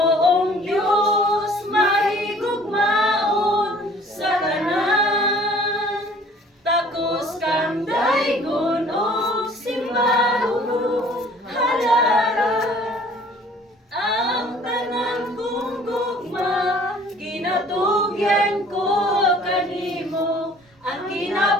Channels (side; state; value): both; normal; correlation 0.53